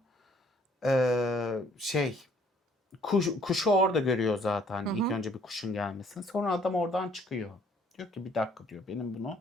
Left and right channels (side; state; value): both; normal; correlation 0.61